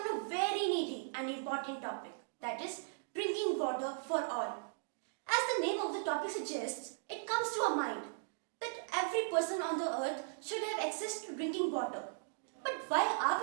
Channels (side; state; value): left; silent; digital silence